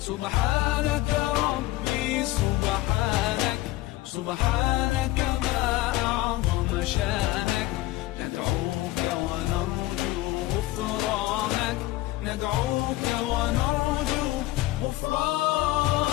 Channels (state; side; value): quieter; right; 17.5 dB